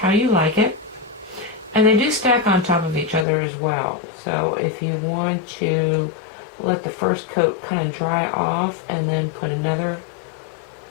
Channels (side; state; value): right; drops out; at 3.2 s